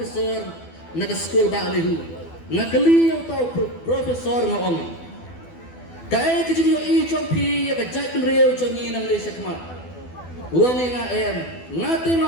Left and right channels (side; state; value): right; late; 12 ms